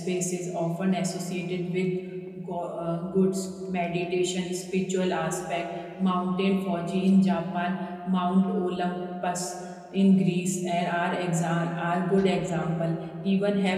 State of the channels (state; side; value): identical; both; correlation 1.00